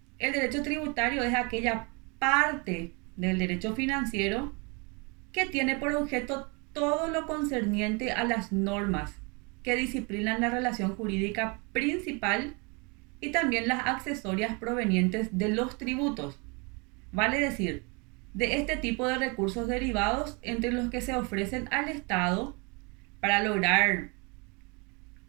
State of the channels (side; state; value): left; quieter; 31.1 dB